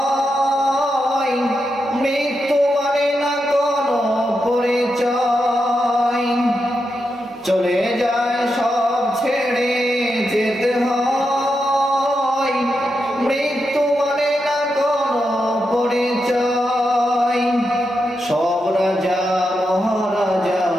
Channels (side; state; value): both; normal; correlation 0.86